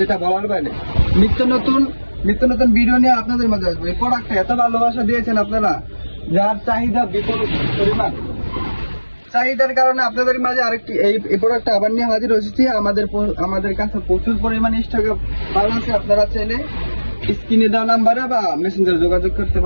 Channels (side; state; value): both; inverted; correlation -1.00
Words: বলার বাইরে। নিত্য নতুন ভিডিও নিয়ে আপনাদের মাঝে আসবে। এই প্রোডাক্টটা এত ভালোবাসা দিয়েছেন আপনারা, যার চাহিদা বিপুল পরিমাণ। চাহিদার কারণে আপনাদের মাঝে আরেকটি এই প্রোডাক্টটা আবার নিয়ে হাজির হয়েছি। আমাদের কাছে প্রচুর পরিমাণে স্টকে মাল আছে। আপনারা চাইলে স্ক্রিনে দেওয়া নাম্বারে বা মেসেঞ্জারে যোগাযোগ করতে